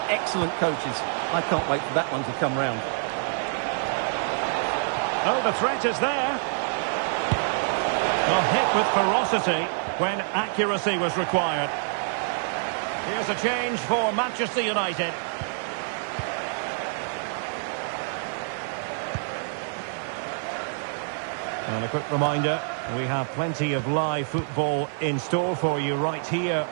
excellent coaches. I can't wait for that one to come round. Oh, the threat is there. A hit with ferocity when accuracy was required. Here's a change for Manchester United. And a quick reminder, We have plenty of live football in store for you right here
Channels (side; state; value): left; silent; 55 dB below the other